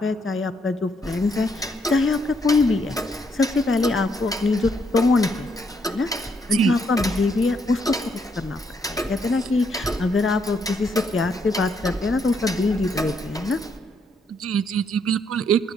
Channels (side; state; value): both; normal; correlation 0.73